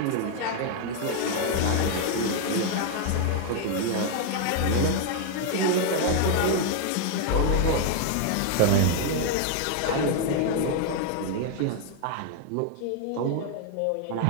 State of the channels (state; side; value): different; both; correlation 0.00